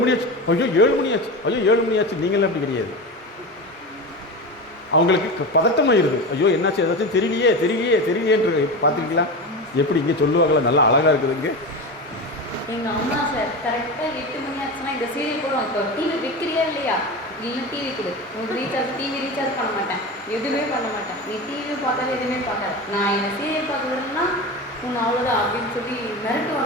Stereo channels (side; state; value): both; normal; correlation 0.24